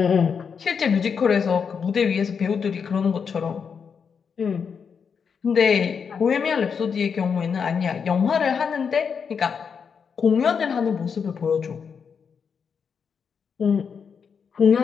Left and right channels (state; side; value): quieter; right; 6.4 dB